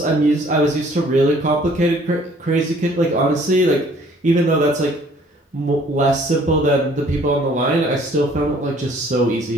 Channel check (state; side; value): normal; both; correlation 0.57